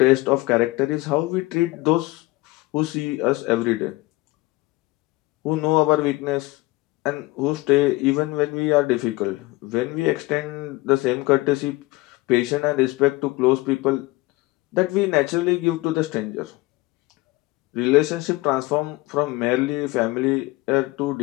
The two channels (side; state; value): right; quieter; 21.3 dB